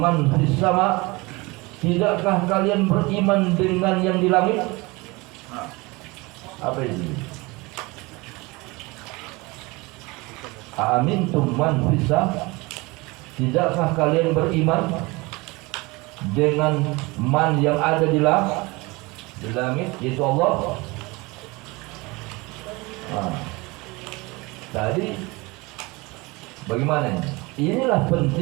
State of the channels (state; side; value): quieter; left; 24.2 dB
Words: fis sama, tidakkah kalian beriman dengan yang di langit? Apa itu? Aamintum man fis sama, tidakkah kalian beriman dengan man yang ada di langit, yaitu Allah? Tadi bagaimana ini? Inilah